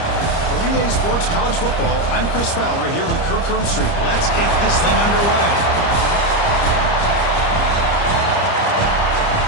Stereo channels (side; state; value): right; late; 30 ms